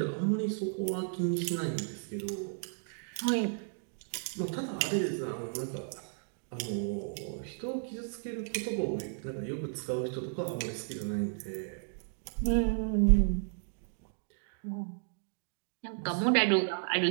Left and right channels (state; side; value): silent; left; digital silence